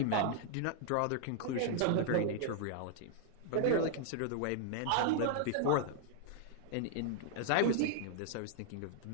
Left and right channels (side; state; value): both; different; correlation -0.01